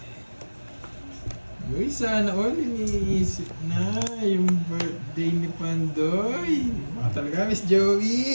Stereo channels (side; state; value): both; inverted; correlation -1.00